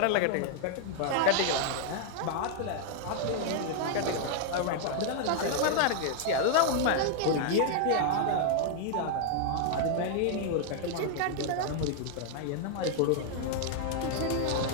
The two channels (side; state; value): both; different; correlation -0.01